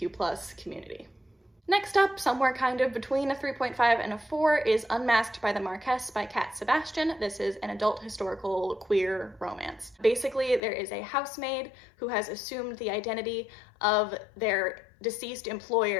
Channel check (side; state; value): right; drops out; at 10.6 s